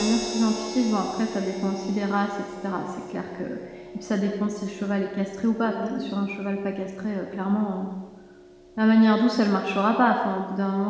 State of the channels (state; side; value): identical; both; correlation 1.00